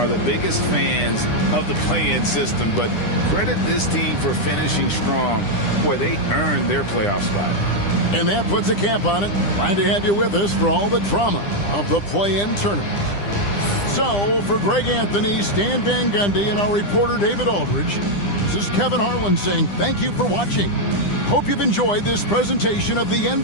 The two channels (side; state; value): right; late; 9.9 ms